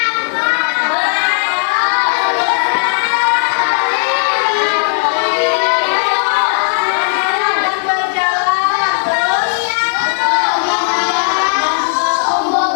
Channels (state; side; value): silent; right; digital silence